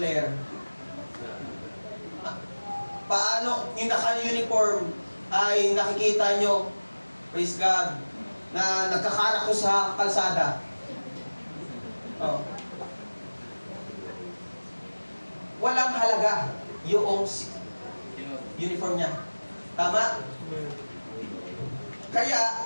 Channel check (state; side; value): inverted; both; correlation -1.00